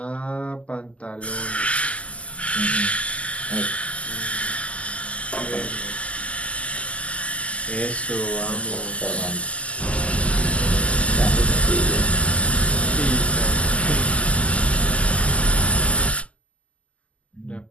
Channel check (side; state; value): right; late; 0.063 ms